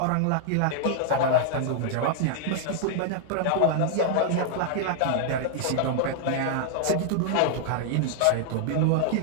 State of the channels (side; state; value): both; different; correlation -0.01